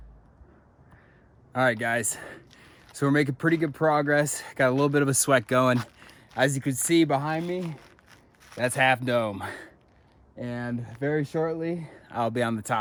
All right, guys, so we're making pretty good progress. Got a little bit of a sweat going. As you can see behind me, that's Half Dome. And very shortly, I'll be on the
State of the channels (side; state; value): both; identical; correlation 1.00